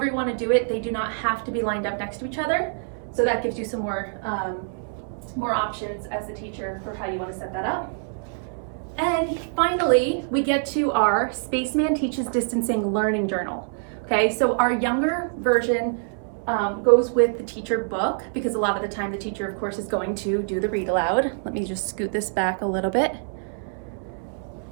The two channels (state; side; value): silent; left; 62 dB below the other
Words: you want to do it, they do not have to be lined up next to each other. So that gives you some more options as the teacher for how you want to set that up. And finally, we get to our Spaceman Teaches Distancing Learning Journal. Okay, so our younger version goes with the teacher book, because a lot of the time the teacher, of course, is going to do the read aloud. Let me just scoot this back a little bit.